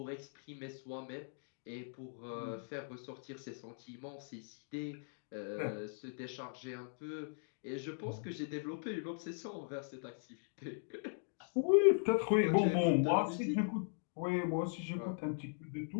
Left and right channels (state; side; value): silent; right; digital silence